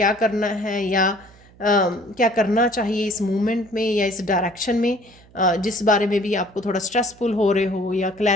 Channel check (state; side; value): noise; right; hum, 26 dB below the sound